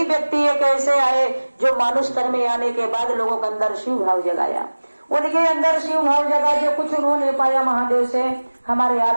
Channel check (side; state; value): both; inverted; correlation -1.00